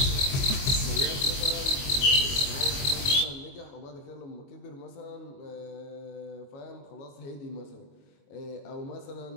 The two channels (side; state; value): right; late; 22 ms